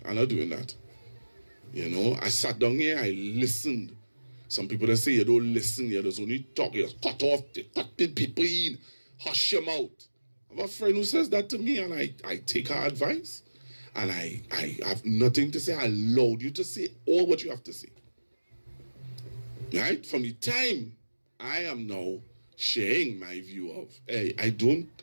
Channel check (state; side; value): inverted; both; correlation -1.00